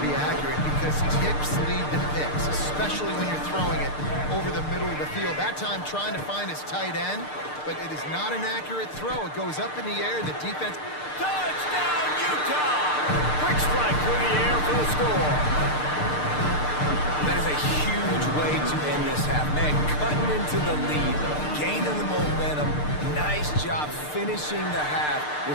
be accurate because tips lead to picks, especially when you're throwing it over the middle of the field. That time trying to find his tight end, but it is not an accurate throw. It goes up in the air, and the defense... Touchdown, Utah! Quick strike through the air for the score. That is a huge way to end this half. Man, cutting into the lead, gaining the momentum. Nice job finishing the half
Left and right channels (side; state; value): right; late; 6.7 ms